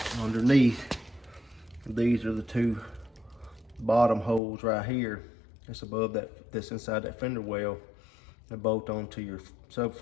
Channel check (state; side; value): drops out; right; at 4.4 s